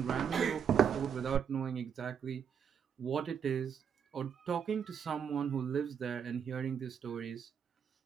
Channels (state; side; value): quieter; left; 7.6 dB